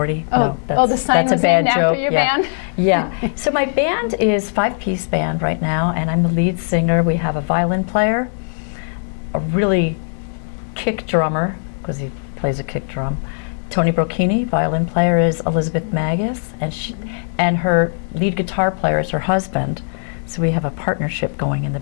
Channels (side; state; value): right; silent; digital silence